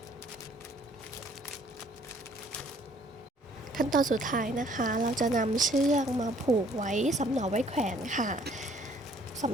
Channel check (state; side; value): normal; both; correlation 0.60